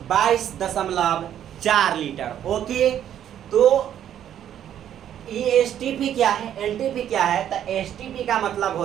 22.4 लीटर। ओके, तो ये एसटीपी क्या है, एनटीपी क्या है, तो एसटीपी का मतलब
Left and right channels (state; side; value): quieter; left; 10.4 dB